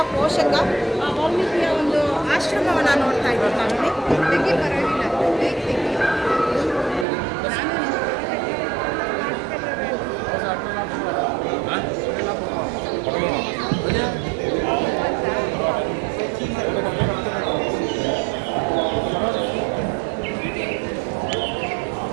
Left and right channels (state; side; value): drops out; left; at 7.1 s